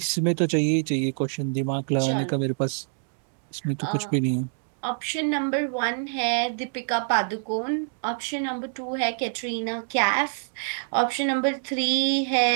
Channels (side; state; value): left; silent; digital silence